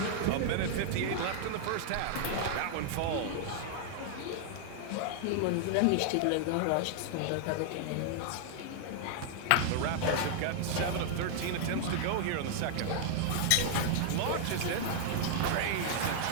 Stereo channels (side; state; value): both; different; correlation -0.01